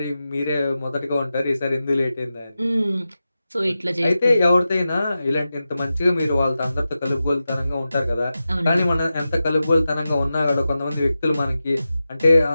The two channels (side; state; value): both; inverted; correlation -0.92